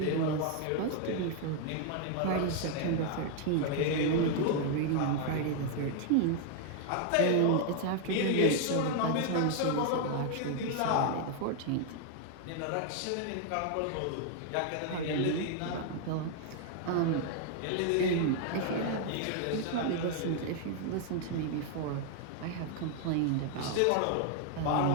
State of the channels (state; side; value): different; both; correlation 0.00